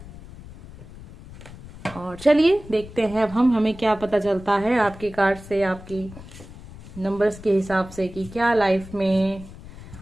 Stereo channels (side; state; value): left; noise; rumble, 16 dB below the sound